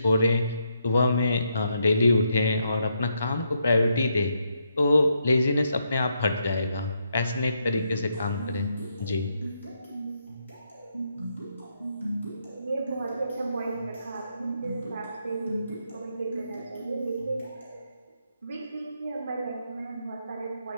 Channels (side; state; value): both; inverted; correlation -0.78